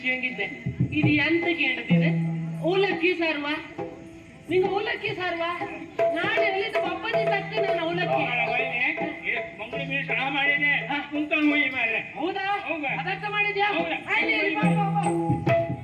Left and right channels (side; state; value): both; identical; correlation 1.00